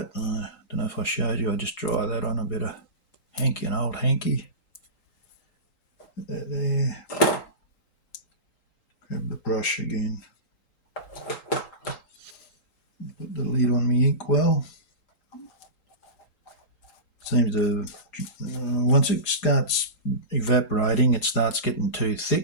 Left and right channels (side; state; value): right; late; 3.8 ms